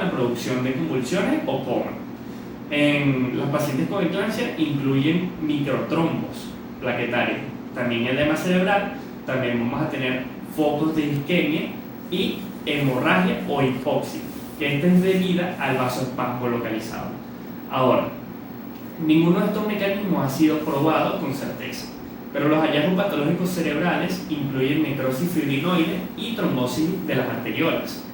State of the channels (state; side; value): identical; both; correlation 1.00